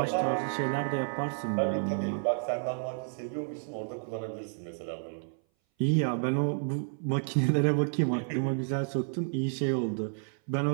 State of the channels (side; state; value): left; silent; 57 dB below the other